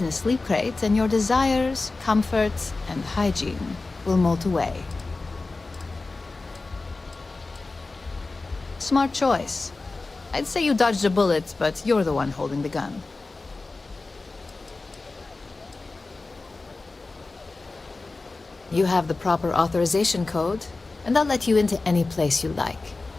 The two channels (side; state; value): right; quieter; 3.5 dB